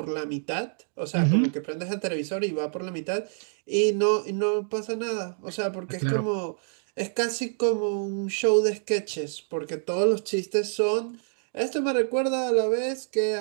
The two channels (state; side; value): silent; left; digital silence